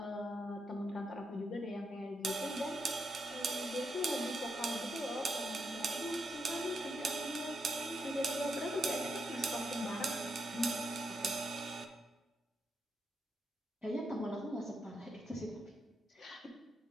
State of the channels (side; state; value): both; normal; correlation 0.81